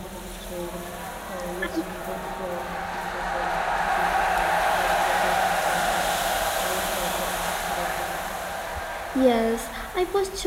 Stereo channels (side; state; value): both; identical; correlation 1.00